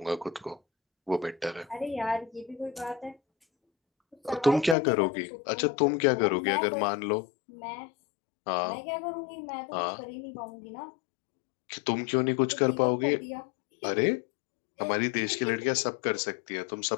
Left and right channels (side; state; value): right; drops out; at 4.8 s